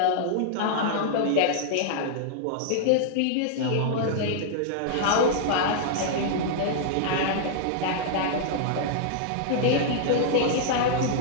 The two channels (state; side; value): different; both; correlation -0.01